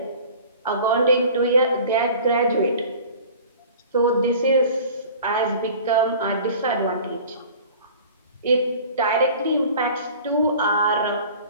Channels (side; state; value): both; inverted; correlation -0.44